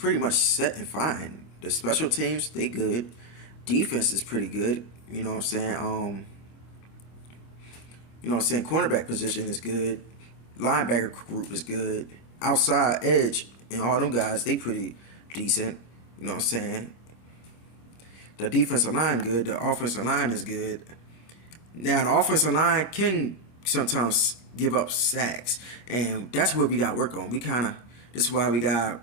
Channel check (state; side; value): late; right; 25 ms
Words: much set and fine. The special teams, they good. Defense is pretty good. You know what I'm saying? You know what I'm saying? Cornerback position is good. Linebacker group is good. Outside edge and all them guys, they pretty decent. You know what I'm saying? The defensive line good. The offensive line is good. Now, the offensive line can sometimes give up sacks. And that's what we got to work on. This is why we got to